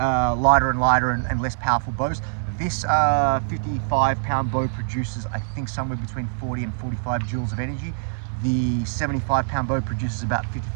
and lighter and less powerful bows. This 55-pound bow produces, I think, somewhere between 40 and 45 joules of energy. The 75-pound bow produces about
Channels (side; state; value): left; silent; 59 dB below the other